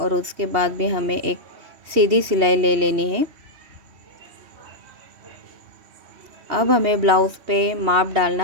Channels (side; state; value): left; late; 3.1 ms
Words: उसके बाद भी हमें एक सीधी सिलाई ले लेनी है। अब हमें ब्लाउज़ पे माप